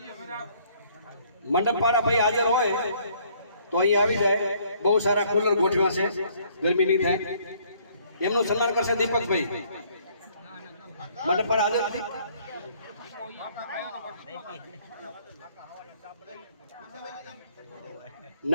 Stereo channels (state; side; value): inverted; both; correlation -0.62